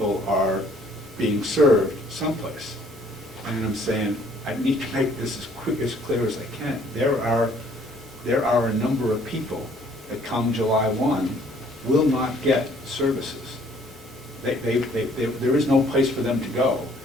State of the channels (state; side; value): normal; both; correlation 0.60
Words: are being served someplace. And I'm saying, I need to make this as clear as I can. There are a number of people that come July 1 will not get services. There is no place for them to go.